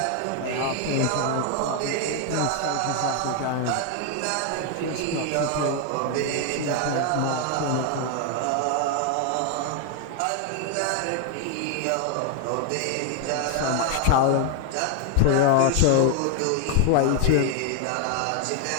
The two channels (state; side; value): different; both; correlation 0.01